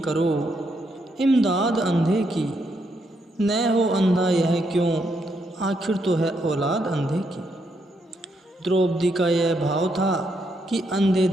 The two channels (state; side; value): normal; both; correlation 0.78